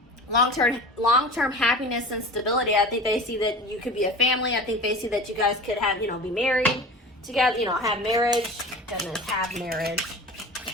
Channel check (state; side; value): normal; both; correlation 0.36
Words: long-term happiness and stability. I think they see that you could be a family. I think they see that you guys could have, you know, be married together, you know, have marriage. Goodness, have marriage.